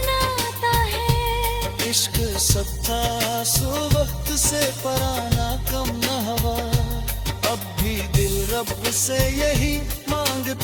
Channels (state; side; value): identical; both; correlation 1.00